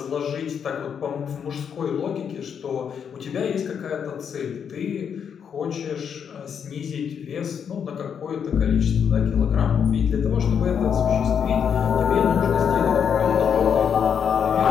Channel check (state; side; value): quieter; right; 7.5 dB